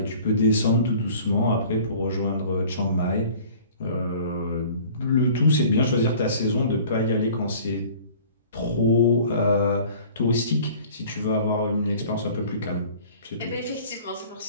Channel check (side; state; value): both; inverted; correlation -0.48